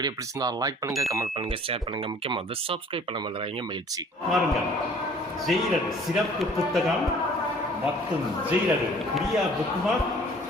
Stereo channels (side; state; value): both; normal; correlation 0.53